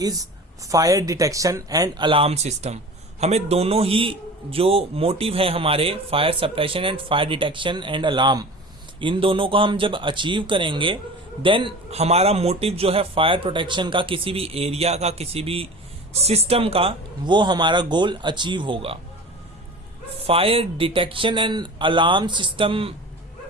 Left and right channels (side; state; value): both; normal; correlation 0.37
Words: fire detection and alarm system. हमें दोनों ही जो मोटिव है हमारे fire suppression and fire detection and alarm, इन दोनों को हम जब अचीव करेंगे देन हमारा मोटिव जो है फायर प्रोटेक्शन का, किसी भी एरिया का, किसी भी सिस्टम का, वो हमारा गोल अचीव होगा। Fire detection and alarm system